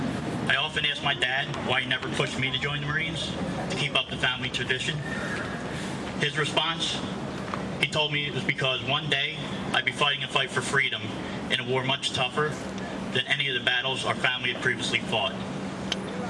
I often ask my dad why he never pushed me to join the Marines to keep up the family tradition. His response, he told me it was because one day I'd be fighting a fight for freedom in a war much tougher than any of the battles our family had previously fought.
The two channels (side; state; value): both; identical; correlation 1.00